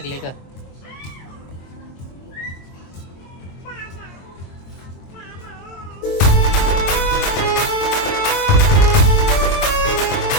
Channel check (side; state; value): right; late; 22 ms